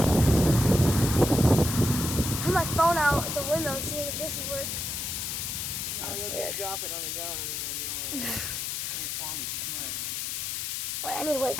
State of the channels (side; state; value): left; noise; hiss, 3 dB below the sound